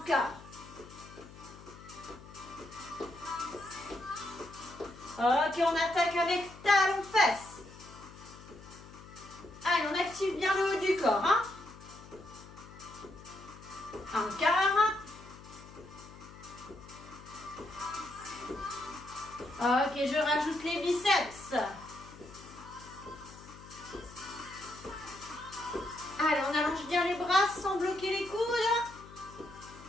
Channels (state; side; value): noise; left; hum, 18 dB below the sound